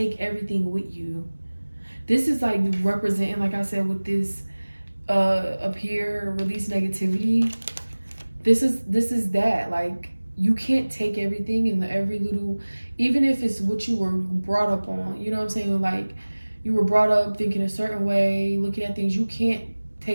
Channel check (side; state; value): both; inverted; correlation -1.00